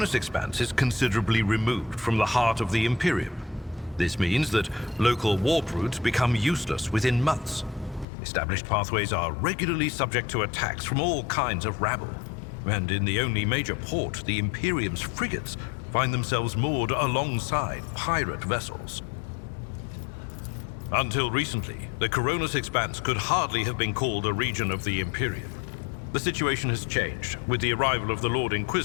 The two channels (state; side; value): drops out; right; at 8.1 s